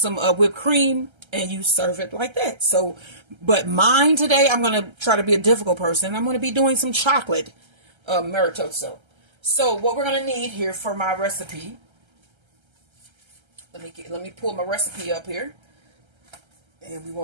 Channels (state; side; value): late; left; 1.3 ms